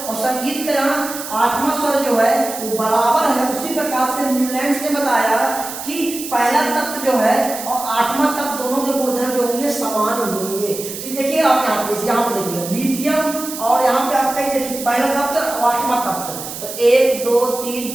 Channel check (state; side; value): noise; right; hiss, 9 dB below the sound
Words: और संगीत का यहाँ आठवां स्वर जो है वो बराबर है। उसी प्रकार से न्यूलैंड ने बताया कि पहला तत्व जो है और आठवां तत्व दोनों के गुणधर्म जो होंगे समान होंगे। तो देखिए आप यहाँ पे देखिए लिथियम और यहाँ पे आपका ये देखिए पहला तत्व और आठवां तत्व, तो 1 2 3